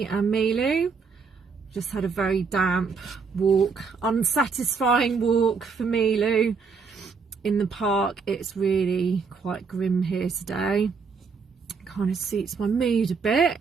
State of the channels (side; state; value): left; quieter; 5.1 dB